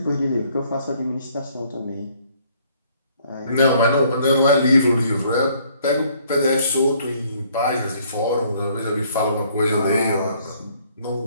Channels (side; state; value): both; inverted; correlation -0.63